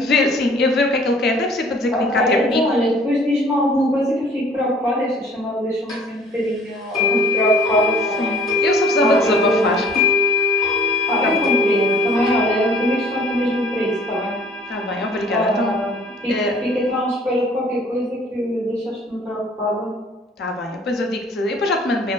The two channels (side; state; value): both; normal; correlation 0.53